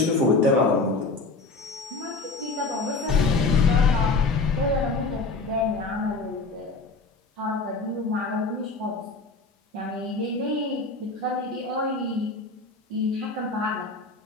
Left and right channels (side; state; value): right; quieter; 3.7 dB